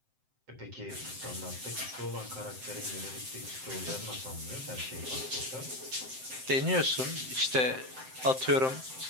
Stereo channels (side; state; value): left; late; 7.7 ms